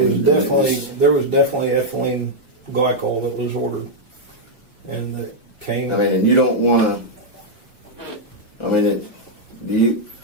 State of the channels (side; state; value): left; late; 1.1 ms